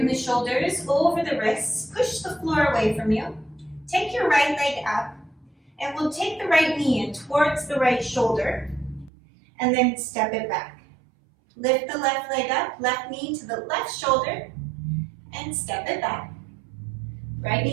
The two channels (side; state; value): left; drops out; at 9.1 s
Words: the shoulders over the wrists. Push the floor away from you. Take your right leg up. And we'll take the right knee in towards the right shoulder. And then step it back. Lift the left leg up. Left knee to the left shoulder. And step it back. Right